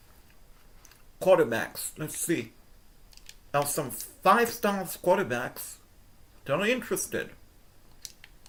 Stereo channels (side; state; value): both; identical; correlation 1.00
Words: Quarterbacks, let's see. There are some 5-star quarterbacks that are interested.